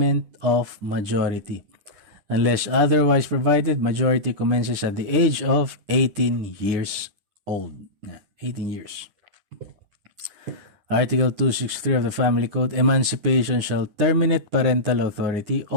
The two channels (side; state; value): left; late; 10 ms